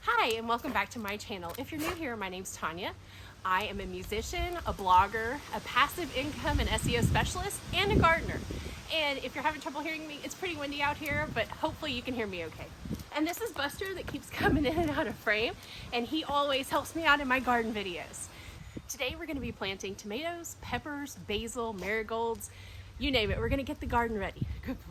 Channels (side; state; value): both; identical; correlation 1.00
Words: Hi, and welcome back to my channel. If you're new here, my name's Tanya. I am a musician, a blogger, a passive income and SEO specialist, and a gardener. And if you're having trouble hearing me, it's pretty windy out here, but hopefully you can hear me okay. And this is Buster that keeps coming in and out of frame, and he always helps me out in my garden videos. Today we're going to be planting tomatoes, peppers, basil, marigolds, you name it. We're going to get the garden ready. Good